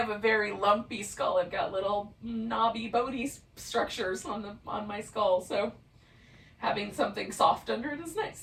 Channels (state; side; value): identical; both; correlation 1.00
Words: a very lumpy skull. I've got little knobby bony structures on my skull, so having something soft under it is